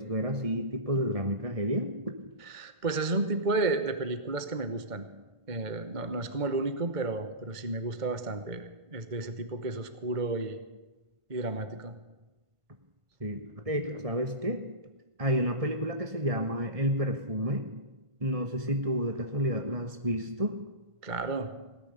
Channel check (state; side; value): late; left; 1.5 ms